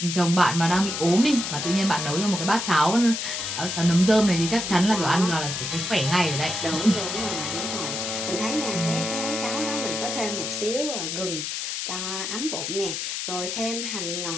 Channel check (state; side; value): noise; left; hiss, 4 dB below the sound